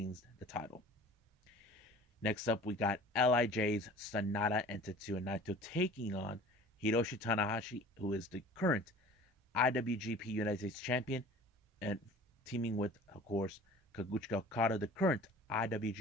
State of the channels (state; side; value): normal; both; correlation 0.44